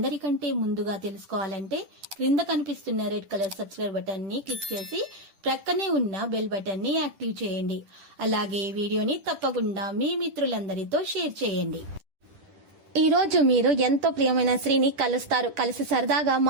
ముందుగా తెలుసుకోవాలంటే క్రింద కనిపిస్తున్న రెడ్ కలర్ సబ్స్క్రైబ్ బటన్ ని క్లిక్ చేసి ప్రక్కనే ఉన్న బెల్ బటన్ ని యాక్టివ్ చేయండి. అలాగే ఈ వీడియోని తప్పకుండా మీ మిత్రులందరితో షేర్ చేయండి. ఈ రోజు మీరు ఎంతో ప్రియమైన స్త్రీని కలుస్తారు. కలిసి సరదాగా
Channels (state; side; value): late; left; 10 ms